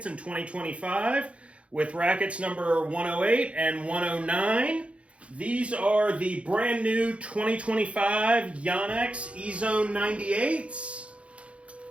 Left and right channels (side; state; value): left; late; 0.062 ms